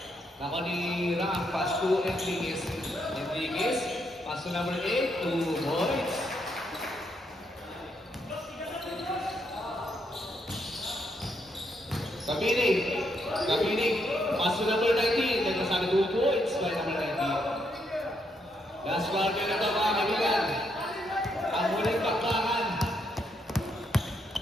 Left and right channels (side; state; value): both; normal; correlation 0.76